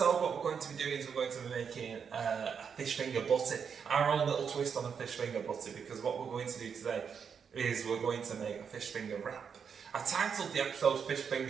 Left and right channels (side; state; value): left; quieter; 6.7 dB